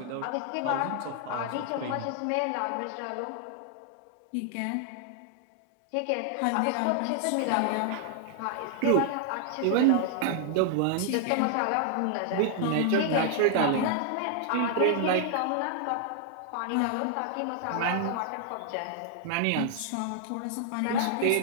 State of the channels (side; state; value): both; different; correlation 0.00